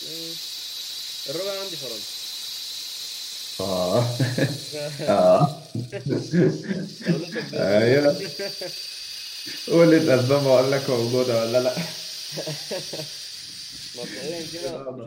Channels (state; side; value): identical; both; correlation 1.00